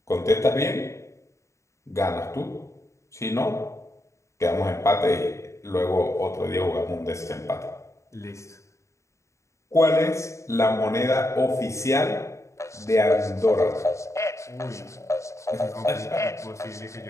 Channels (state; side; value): late; right; 0.14 ms